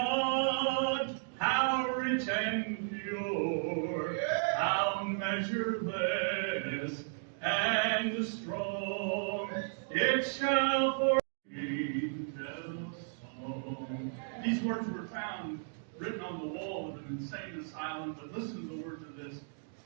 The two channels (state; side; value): silent; left; digital silence